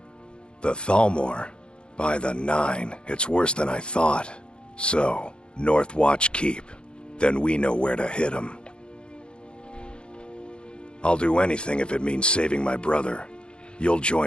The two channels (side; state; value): right; late; 0.054 ms